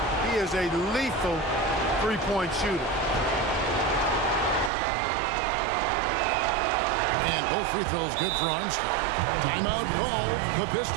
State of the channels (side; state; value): left; drops out; at 4.7 s